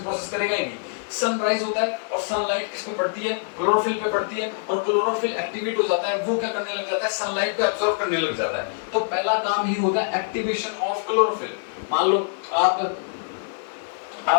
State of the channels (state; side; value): silent; right; 62 dB below the other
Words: करेगा ही नहीं। सनराइज होता है और सनलाइट किस पे पड़ती है, क्लोरोफिल पे पड़ती है, और क्लोरोफिल एक्टिवेट हो जाता है, वो क्या करने लग जाता है, सनलाइट को एब्जॉर्ब करने लग जाता है। तो पहला काम ही होता है एक्टिवेशन ऑफ क्लोरोफिल। मान लो